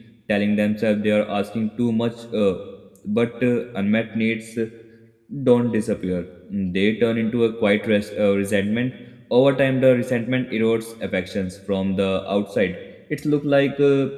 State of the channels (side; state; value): both; identical; correlation 1.00